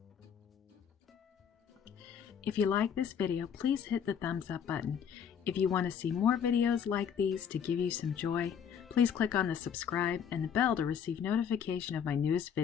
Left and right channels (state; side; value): quieter; right; 7.9 dB